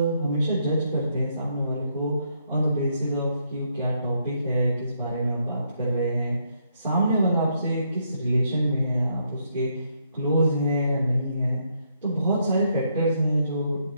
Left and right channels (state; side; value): inverted; both; correlation -0.75